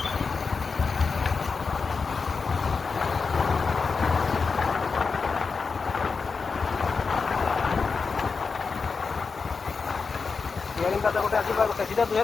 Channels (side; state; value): right; quieter; 4.9 dB